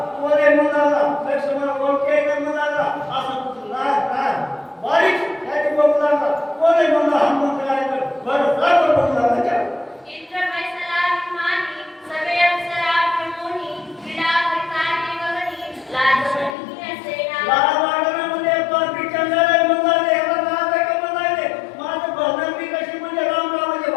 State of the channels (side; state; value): right; drops out; at 16.6 s